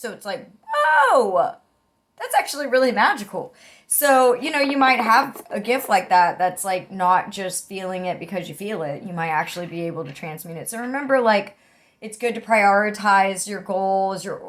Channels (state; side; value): identical; both; correlation 1.00